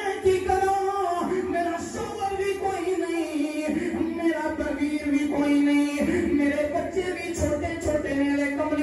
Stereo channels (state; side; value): identical; both; correlation 1.00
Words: کی کراں میرا شوہر بھی کوئی نہیں میرا ویر بھی کوئی نہیں میرے بچے بھی چھوٹے چھوٹے میرے